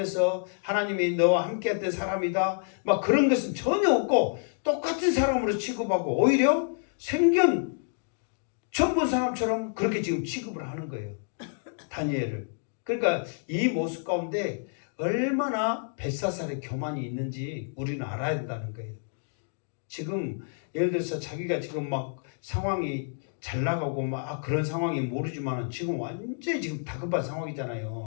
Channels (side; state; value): right; silent; digital silence